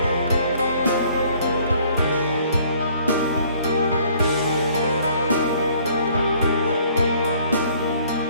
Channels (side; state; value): both; inverted; correlation -0.59